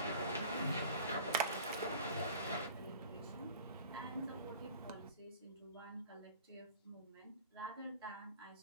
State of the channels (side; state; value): both; inverted; correlation -0.43